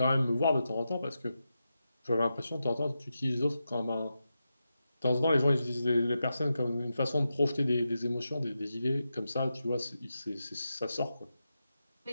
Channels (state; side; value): inverted; both; correlation -0.89